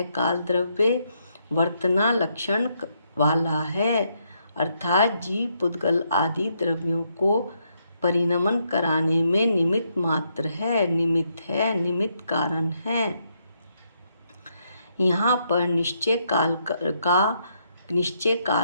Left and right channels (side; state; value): both; inverted; correlation -0.76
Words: काल द्रव्य? वर्तना लक्षण वाला है, अर्थात जीव पुद्गल आदि द्रव्यों को परिणमन कराने में निमित्त मात्र है, निमित्त कारण है। यहाँ पर निश्चय